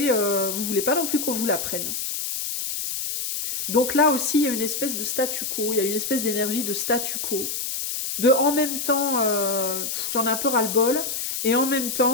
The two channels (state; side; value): noise; left; hiss, 3 dB below the sound